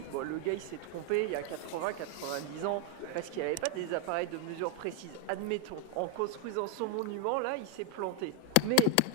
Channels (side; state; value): both; different; correlation 0.00